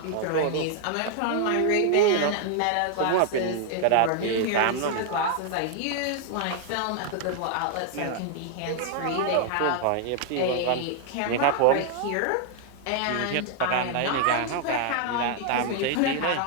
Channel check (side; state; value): both; different; correlation 0.00